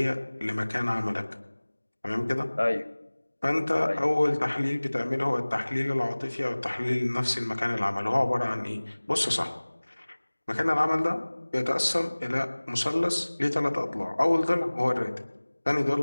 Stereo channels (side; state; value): both; inverted; correlation -1.00